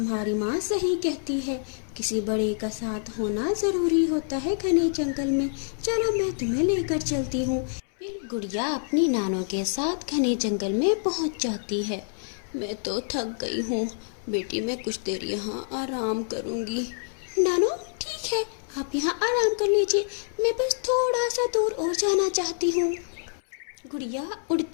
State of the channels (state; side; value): silent; right; 60 dB below the other